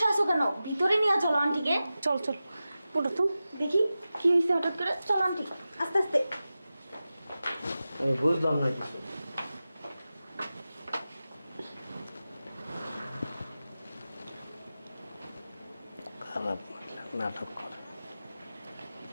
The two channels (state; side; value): inverted; both; correlation -0.94